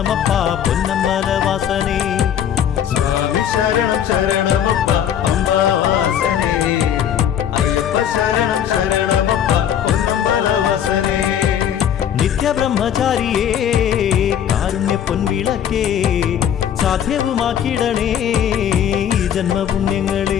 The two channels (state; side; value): quieter; right; 9.5 dB